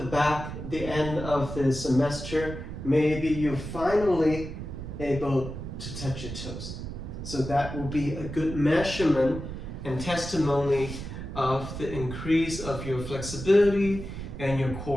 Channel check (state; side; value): noise; right; rumble, 8 dB below the sound